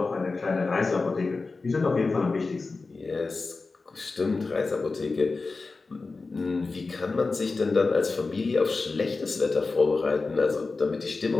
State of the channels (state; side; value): quieter; right; 3.9 dB